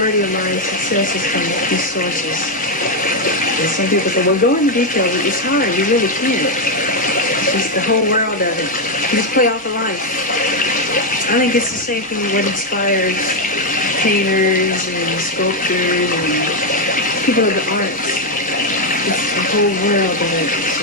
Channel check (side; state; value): both; normal; correlation 0.03